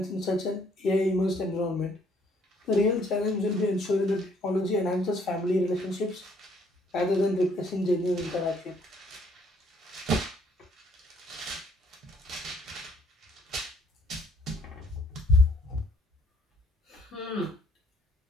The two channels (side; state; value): both; normal; correlation 0.65